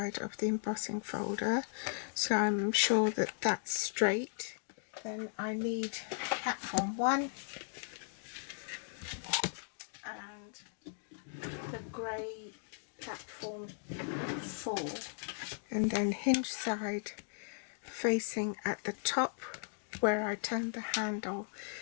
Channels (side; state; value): right; silent; digital silence